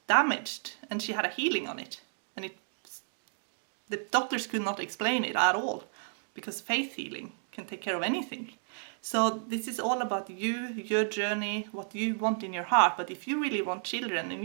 damaged, and she had a healing on it, and the doctors could not explain it at all, because faith healing can take care of anything. So this is all about you, your journey, what you want in your heart. But if you really want children, and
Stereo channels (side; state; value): left; silent; digital silence